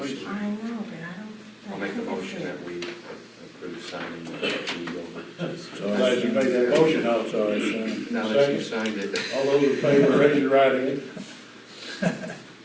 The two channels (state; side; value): identical; both; correlation 1.00